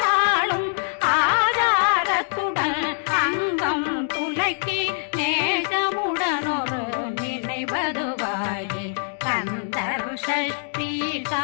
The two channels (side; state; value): right; silent; 63 dB below the other